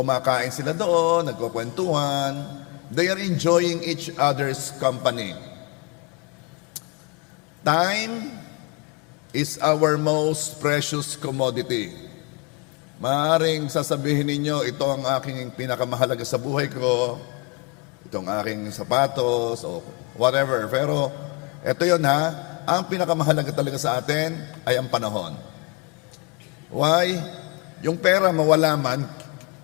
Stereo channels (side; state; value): right; quieter; 28.7 dB